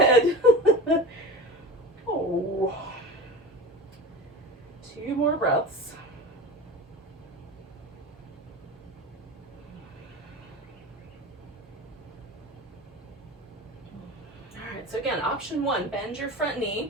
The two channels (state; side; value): normal; both; correlation 0.31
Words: Oh. 2 more breaths. All right, so again, option 1, bend your front